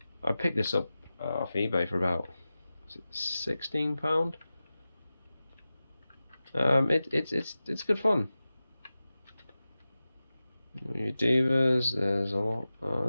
I picked this up off eBay for about, is it £16? It's good fun. Your divas, there's a lot.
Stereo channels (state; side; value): inverted; both; correlation -0.95